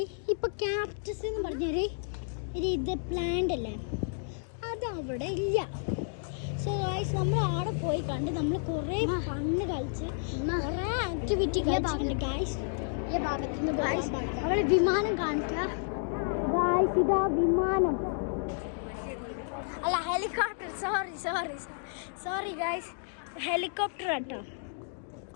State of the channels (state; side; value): silent; right; digital silence